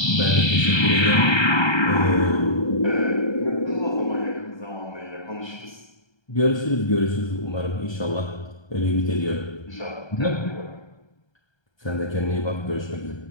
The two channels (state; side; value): late; right; 1.3 ms